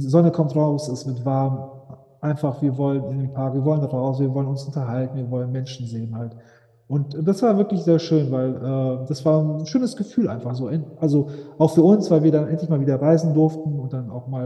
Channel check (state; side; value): identical; both; correlation 1.00